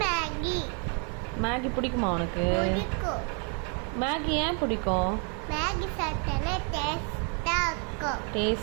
மேகி பிடிக்குமா உனக்கு? பிடிக்கும். மேகி ஏன் பிடிக்கும்? மேகி சாப்பிட்டா டேஸ்டா இருக்கும்.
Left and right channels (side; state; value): left; quieter; 39.1 dB